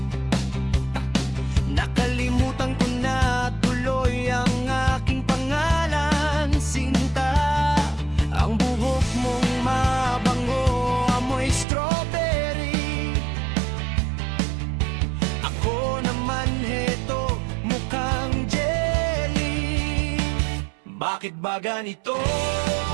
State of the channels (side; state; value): left; drops out; at 11.7 s